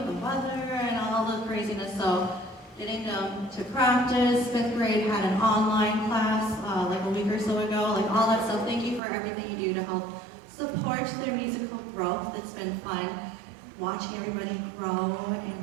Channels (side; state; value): left; drops out; at 9.0 s